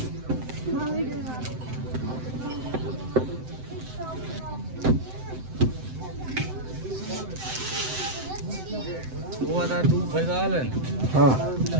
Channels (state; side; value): late; left; 7.8 ms